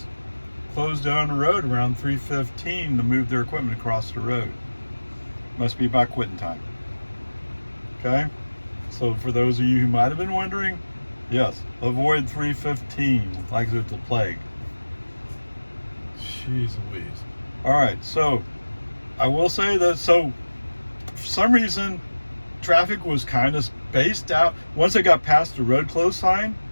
closed down the road around 3:15 to move their equipment across the road. Must be about quitting time. Okay, so for those of you who might have been wondering, yes, avoid 3:15 like it's a plague. Jeez Louise. All right, so I will say that, so for some reason, traffic was kind of spaced out. Once I got past the road closed sign,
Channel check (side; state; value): both; inverted; correlation -1.00